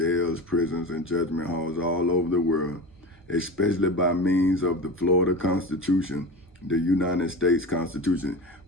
prisons, and judgment halls all over the world, especially by means of the Florida Constitution, the United States Constitution,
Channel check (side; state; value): both; normal; correlation 0.29